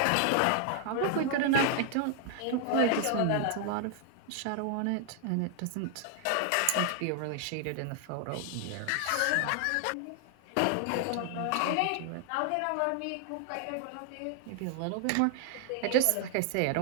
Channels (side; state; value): both; different; correlation 0.00